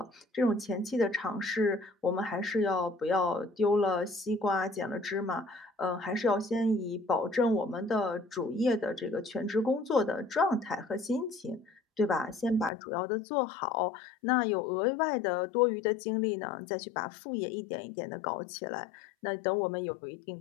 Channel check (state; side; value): drops out; right; at 12.7 s